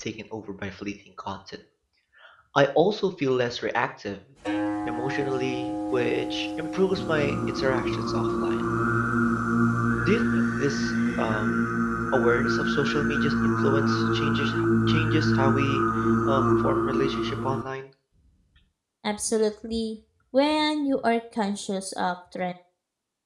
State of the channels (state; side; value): identical; both; correlation 1.00